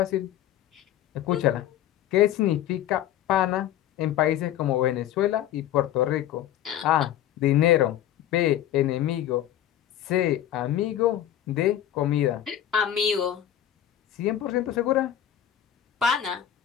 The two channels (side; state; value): right; quieter; 11.5 dB